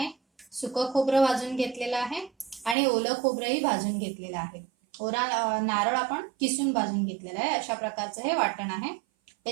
सुकं खोबरं भाजून घेतलेलं आहे आणि ओलं खोबरंही भाजून घेतलेलं आहे. ओला नारळ आपण किसून भाजून घेतलेला आहे. अशा प्रकारचं हे वाटण आहे.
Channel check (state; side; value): drops out; left; at 2.8 s